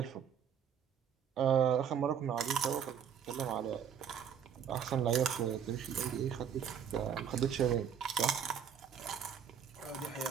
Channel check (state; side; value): quieter; left; 8.3 dB